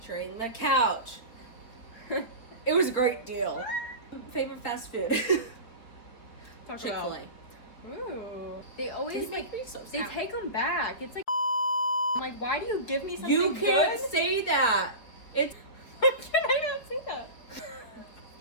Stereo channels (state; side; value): late; right; 4.8 ms